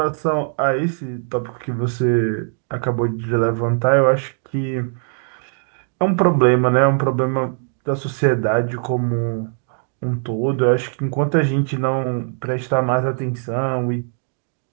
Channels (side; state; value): left; silent; 65 dB below the other